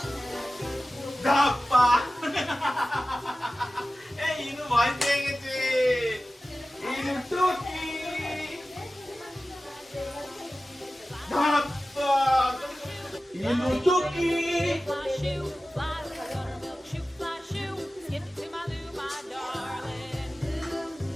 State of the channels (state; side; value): normal; both; correlation 0.96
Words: ধাপ্পা। এই ইনু ভয় পেয়ে গেছে। ইনুটুকি ধাপ্পা, ইনুটুকি। Fly shoe, fly milk shoe, fly shoe, skip to my loo, my darling.